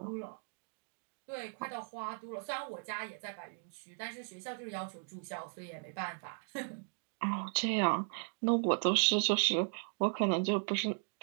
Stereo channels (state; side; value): silent; left; 53 dB below the other